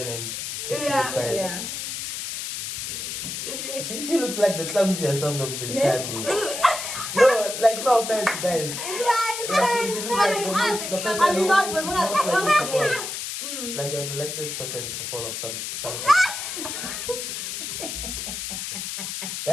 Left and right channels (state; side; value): noise; left; hiss, 5 dB below the sound